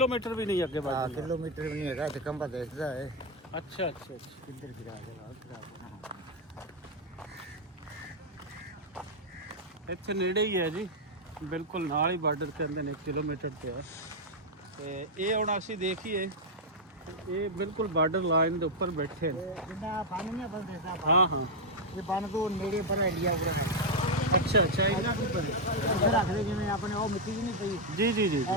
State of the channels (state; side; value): normal; both; correlation 0.00